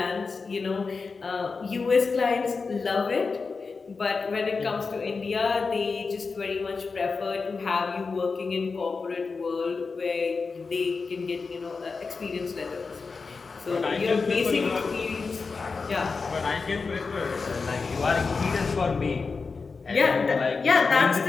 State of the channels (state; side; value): quieter; right; 4.6 dB